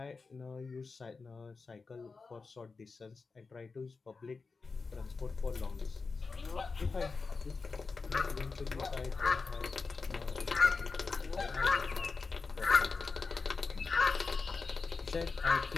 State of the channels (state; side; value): quieter; right; 4.4 dB